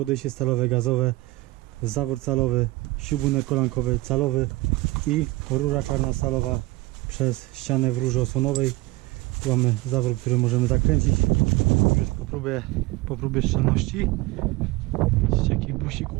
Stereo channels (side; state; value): left; quieter; 20.5 dB